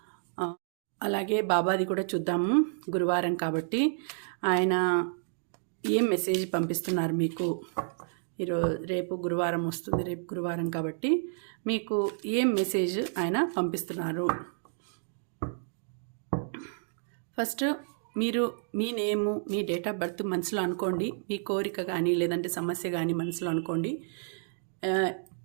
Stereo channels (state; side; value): silent; left; digital silence